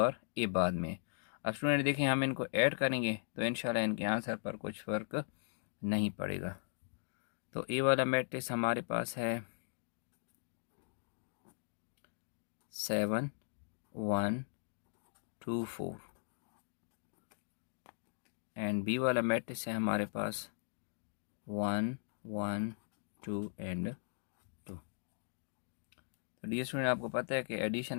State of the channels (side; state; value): right; silent; digital silence